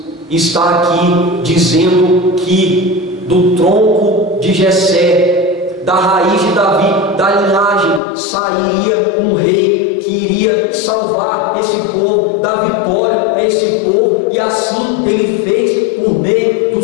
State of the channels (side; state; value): right; drops out; at 8.0 s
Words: está aqui dizendo que do tronco de Jessé, da raiz de Davi, da linhagem, sairia um rei que iria salvar esse povo, dar vitória a esse povo, e assim ele fez por meio do